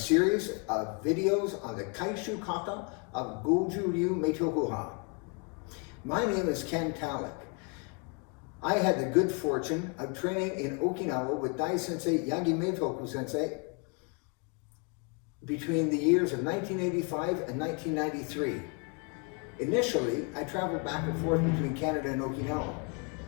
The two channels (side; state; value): right; quieter; 34.6 dB